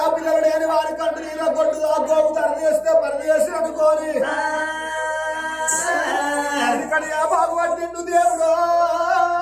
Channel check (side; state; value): right; noise; hum, 27 dB below the sound